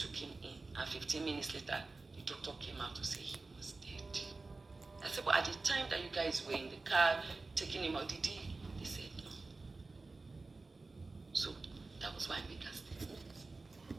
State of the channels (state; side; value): quieter; left; 3.6 dB